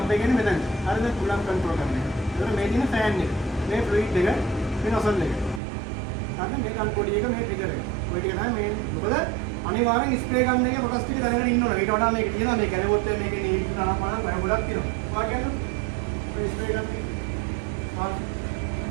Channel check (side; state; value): left; drops out; at 5.6 s